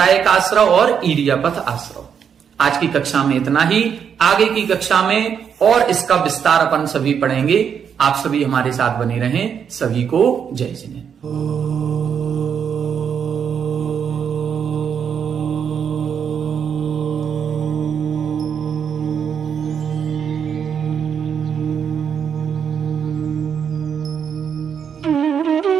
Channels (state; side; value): quieter; left; 7.5 dB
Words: आश्रव और ईरियापथ आश्रव। आज की कक्षा में इतना ही, आगे की कक्षा में और इसका विस्तार अपन सभी पढ़ेंगे। आप सभी हमारे साथ बने रहें। सभी को जय जिनेन्द्र।